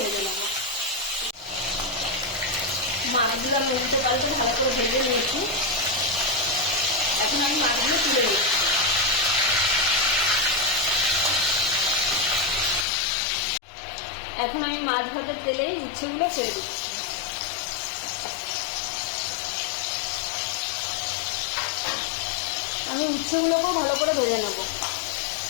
নেব। মাছগুলো আমি উল্টে পাল্টে ভালো করে ভেজে নিয়েছি। এখন আমি মাছগুলো তুলে নিচ্ছি। এখন আমি মাছ ভাজার তেলে উচ্ছেগুলো ছেড়ে দিচ্ছি। আমি উচ্ছেগুলোকেও ভালো করে ভেজে নেব।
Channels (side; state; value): right; drops out; at 12.9 s